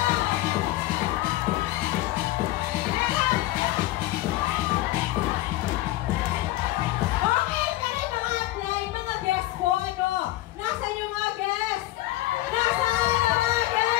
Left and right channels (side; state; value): right; quieter; 16.7 dB